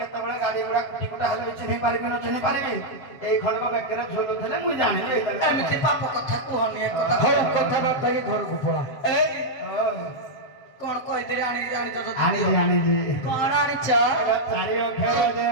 ଗାଡି ଗୁଡା କୁଟି କୁଟା ହେଲେ ବି ଚିହ୍ନି ପାରିବି ନ ଚିହ୍ନି ପାରିବି। ଏଇ ଖଣ୍ଡକ ବେକରେ ଝୁଲୁଥିଲେ ମୁଁ ଜାଣିଲି ଏଇଟା। ଏମିତି ପାପ କଥା କୁହନି ଏ କଥା। ହଉ କଥାବାର୍ତ୍ତା ହେଇକି ଘରକୁ ପଳା। ଏଇ କଣ କହିଥିଲି ଆଣିଛ ତ? ଆଣିଛି ଆଣିଛି। କଣ ଆଣିଛ? ଚାରି ଅକ୍ଷର ଯେ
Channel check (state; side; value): late; right; 7.6 ms